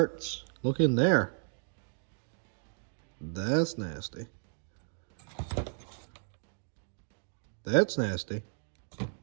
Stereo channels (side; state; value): left; silent; digital silence